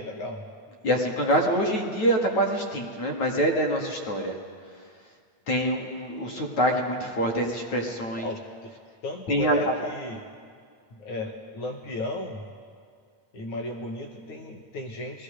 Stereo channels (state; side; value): late; right; 9.2 ms